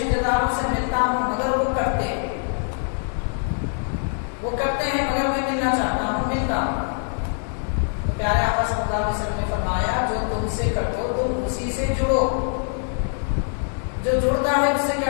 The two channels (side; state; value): right; silent; 57 dB below the other